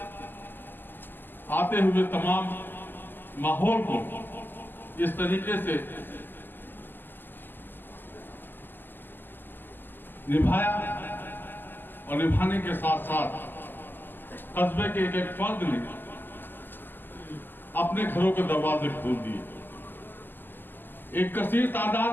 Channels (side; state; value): right; late; 0.092 ms